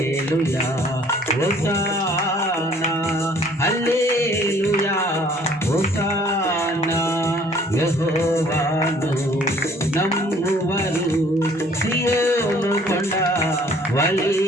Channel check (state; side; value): normal; both; correlation 0.57